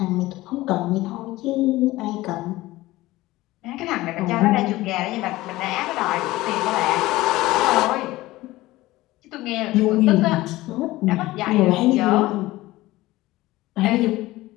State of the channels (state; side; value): quieter; right; 18.1 dB